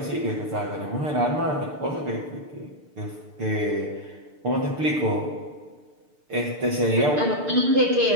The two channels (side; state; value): left; late; 6.7 ms